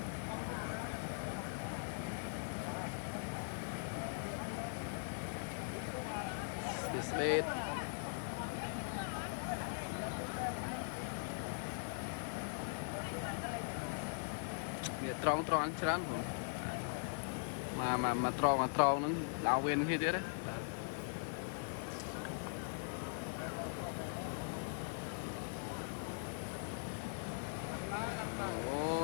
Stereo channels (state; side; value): silent; right; 50 dB below the other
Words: Display. Để tròn tròn chán rồi. Mà tròn nó đào viên như thế đấy.